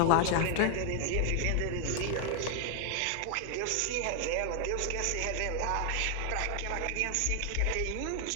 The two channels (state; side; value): different; both; correlation 0.00